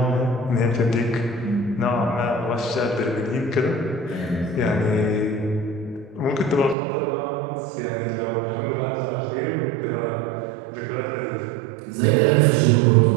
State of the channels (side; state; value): left; drops out; at 6.8 s